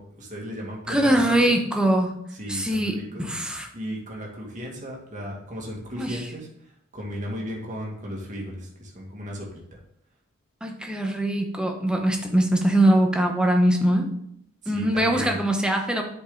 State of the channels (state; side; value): normal; both; correlation 0.81